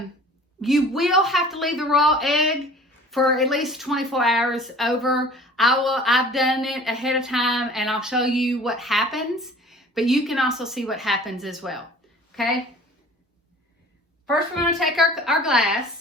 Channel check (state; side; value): normal; both; correlation 0.46